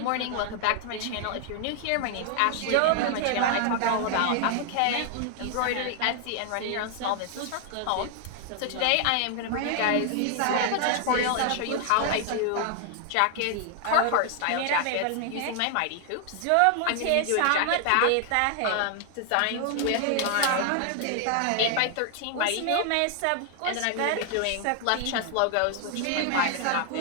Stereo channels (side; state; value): both; different; correlation 0.00